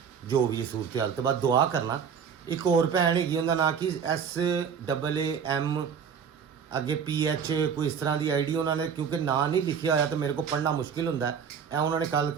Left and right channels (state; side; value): quieter; left; 7.0 dB